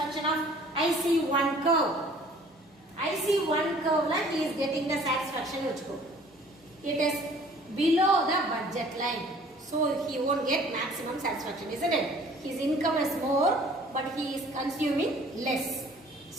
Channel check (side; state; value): both; normal; correlation 0.53